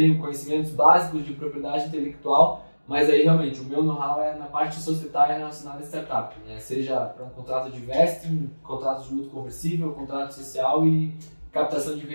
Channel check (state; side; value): inverted; both; correlation -1.00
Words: conhecimentos básicos de propriedade intelectual, mas aí realmente o meu know-how é na parte societária relacionada a startup, né? Seja para um contrato de vesting, contrato de luto conversível, contrato social e captação de